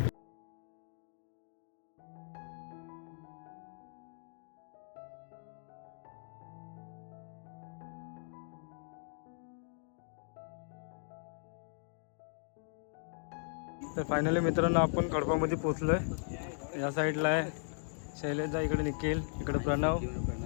तर फायनली मित्रांनो आपण खडपामध्ये पोचलो आहे. या साईडला आहे शैलेशदा, इकडे निखिल, इकडे प्रणव.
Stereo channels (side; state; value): right; silent; digital silence